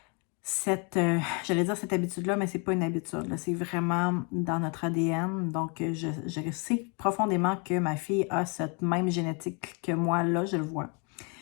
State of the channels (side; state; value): right; quieter; 34.4 dB